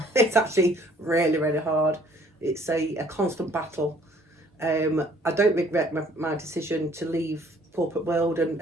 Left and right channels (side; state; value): both; normal; correlation 0.58